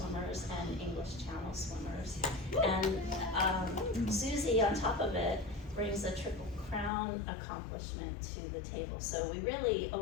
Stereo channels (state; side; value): drops out; right; at 6.9 s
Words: and English Channel swimmers. And Susie, on top of it, brings a Triple Crown accomplishment to the table. So we really